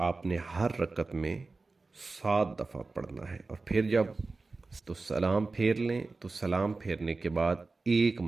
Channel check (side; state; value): left; quieter; 3.7 dB